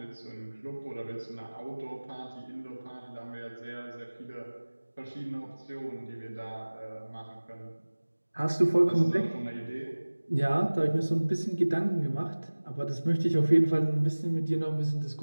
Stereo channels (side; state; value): both; inverted; correlation -1.00